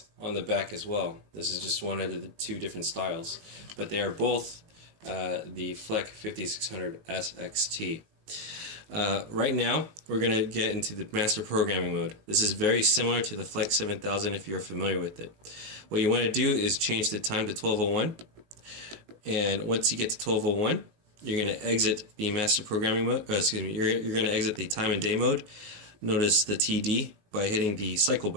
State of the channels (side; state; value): left; late; 19 ms